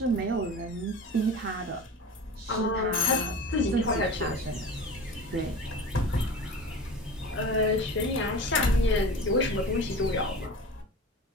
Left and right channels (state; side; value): normal; both; correlation 0.34